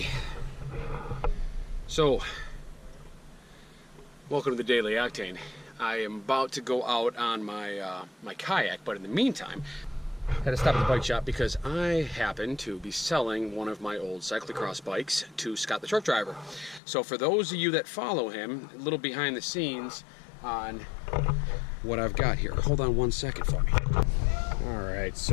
so welcome to the Daily Octane. I am about to go out on my my kayak, but in the meantime, I had to stop at the bike shop because I happen to be selling one of my old cyclocross bikes to Scott the truck driver. So for those of you that follow him, a little behind the scenes on what I've got here. Hold on one second for me. All right,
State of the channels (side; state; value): right; drops out; at 16.8 s